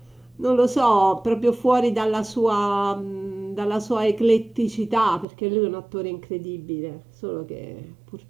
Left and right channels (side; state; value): left; drops out; at 5.2 s